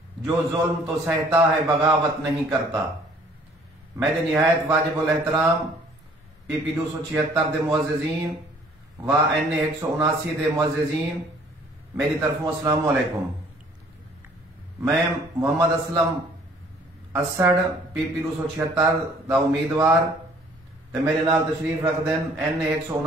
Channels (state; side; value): normal; both; correlation 0.57